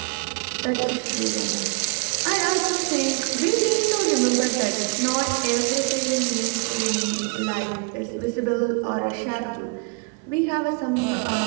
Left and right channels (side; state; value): left; quieter; 33.7 dB